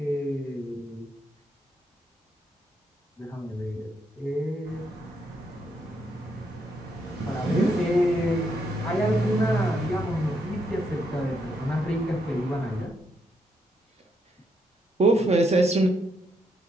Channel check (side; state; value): both; normal; correlation 0.77